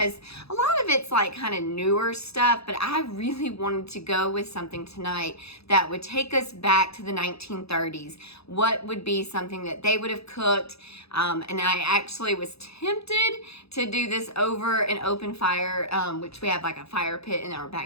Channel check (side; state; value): right; late; 0.78 ms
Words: a lot of it's like kind of newer stuff, but I really wanted to go with something tonight that would take us back to the 1930s. What would be something that they would have cooked? And I actually was tempted to do this over an open fire, which we have like a fire pit in our